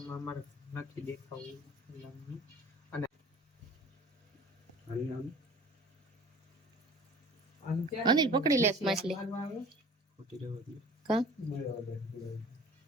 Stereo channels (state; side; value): normal; both; correlation 0.45